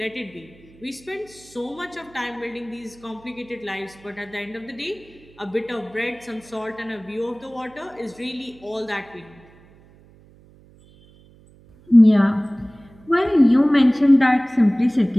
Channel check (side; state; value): right; noise; hum, 26 dB below the sound